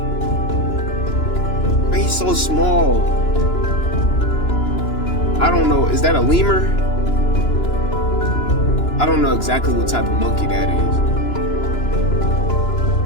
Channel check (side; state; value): right; late; 2.9 ms